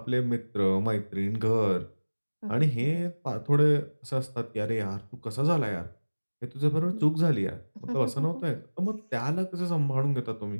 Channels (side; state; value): both; inverted; correlation -1.00